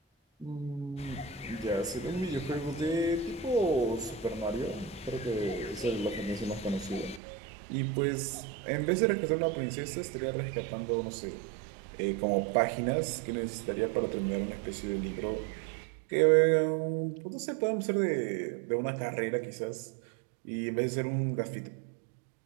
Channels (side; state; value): left; drops out; at 7.2 s